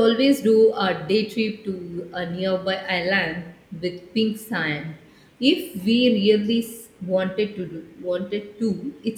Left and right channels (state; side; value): identical; both; correlation 1.00